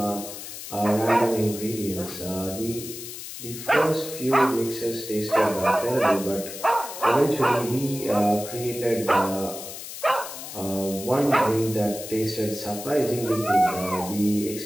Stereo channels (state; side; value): noise; left; hiss, 10 dB below the sound